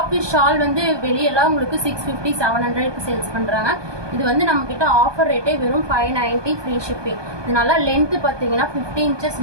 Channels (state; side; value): late; left; 1.2 ms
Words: வித் ஷால் வந்து வெளியெல்லாம் உங்களுக்கு 650 700க்கு சேல்ஸ் பண்ணுறாங்க. இது வந்து நம்மக்கிட்ட ஆஃபர் ரேட்டே வெறும் 590 ஃப்ரீ ஷிப்பிங். இது நல்லா லென்த்து பார்த்தீங்கன்னா 50 இன்ச்சஸ்